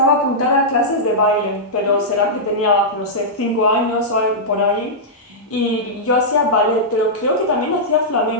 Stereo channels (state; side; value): normal; both; correlation -0.10